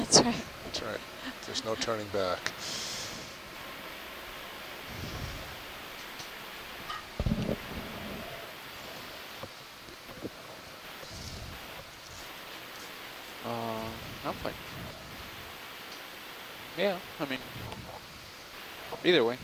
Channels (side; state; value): both; identical; correlation 1.00